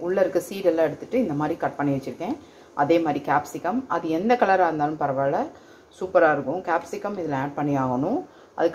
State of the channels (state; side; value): identical; both; correlation 1.00